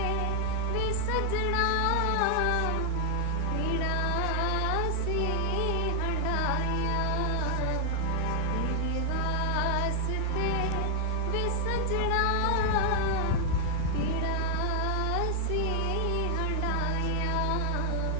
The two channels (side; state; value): both; different; correlation 0.00